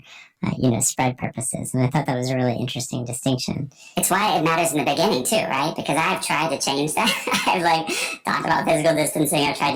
spread purposes. And I thought that was a really interesting distinction. It's why it matters in the beginning too, right? Because I've tried to change that. I've talked about physical distancing. I've tried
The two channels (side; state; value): both; identical; correlation 1.00